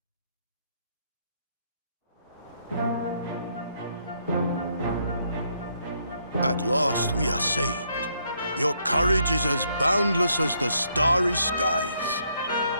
At last we are saved. Your courage is as boundless as the starry skies.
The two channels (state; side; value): inverted; both; correlation -0.73